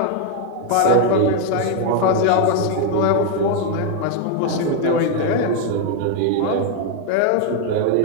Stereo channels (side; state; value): both; different; correlation 0.00